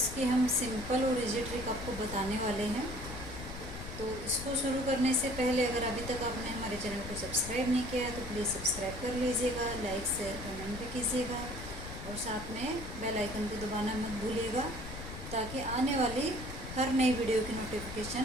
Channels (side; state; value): left; noise; rumble, 10 dB below the sound